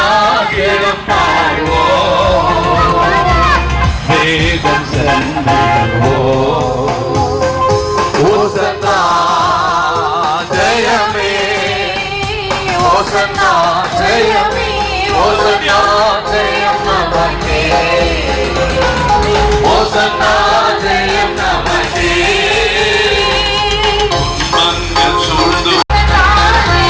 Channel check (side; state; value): both; identical; correlation 1.00